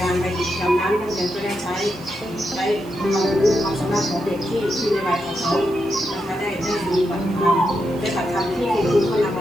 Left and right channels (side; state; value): right; noise; hiss, 23 dB below the sound